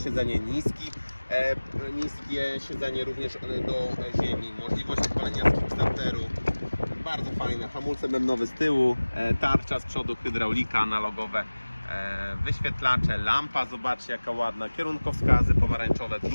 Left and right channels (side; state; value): both; inverted; correlation -1.00